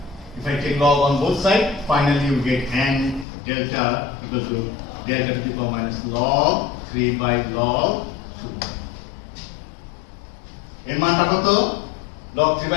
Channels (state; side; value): drops out; right; at 3.2 s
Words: If I take log on both sides, finally you get n delta equal to delta to the power minus log 3 by log 2. এর মানটা কত log 3